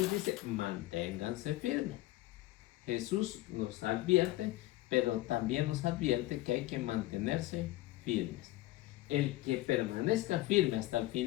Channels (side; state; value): right; quieter; 17.1 dB